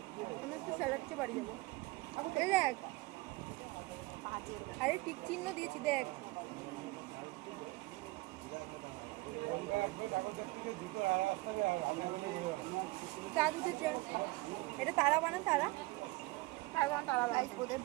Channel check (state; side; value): quieter; left; 22.1 dB